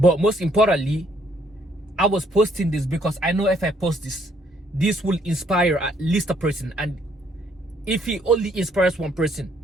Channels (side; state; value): both; normal; correlation 0.68